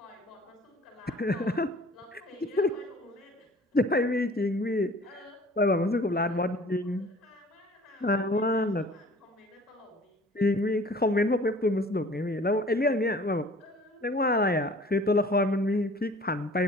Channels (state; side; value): normal; both; correlation 0.49